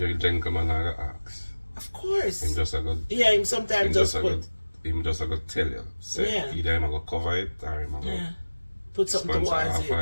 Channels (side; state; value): both; inverted; correlation -1.00